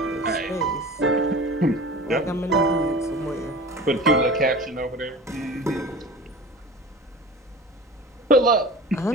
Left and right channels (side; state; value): both; normal; correlation 0.37